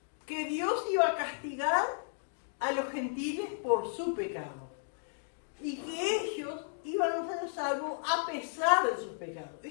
que Dios iba a castigar a los gentiles por su pecado y que ellos iban a ser salvos a pesar de sus pecados.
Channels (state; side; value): silent; right; digital silence